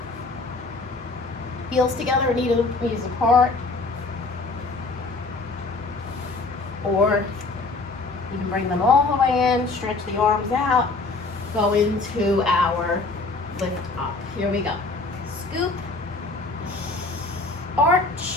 Heels together, knees apart. Or you can bring them all the way in, stretch the arms out, go into our lift up. Here we go. Scoop,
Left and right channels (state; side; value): quieter; right; 3.6 dB